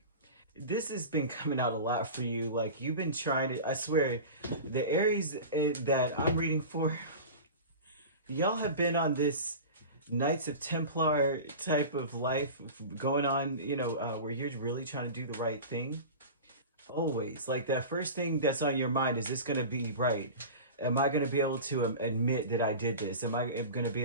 This has been coming out a lot for you. Like, you've been trying to, I swear, the Aries that I'm reading for, y'all have been on this Knights of Templar type of life going on, where you're really trying to do the right thing. Always. Like, that first thing that's on your mind, is this going to be right? Am I going to be able to admit that I did this? Am I going to be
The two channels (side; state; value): both; inverted; correlation -0.32